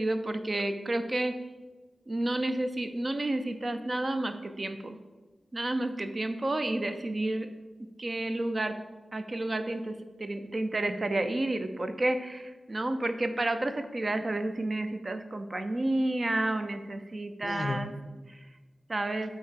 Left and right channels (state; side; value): normal; both; correlation 0.97